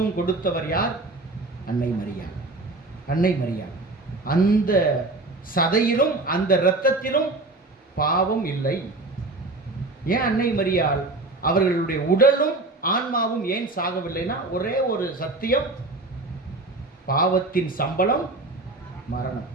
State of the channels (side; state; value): left; quieter; 3.1 dB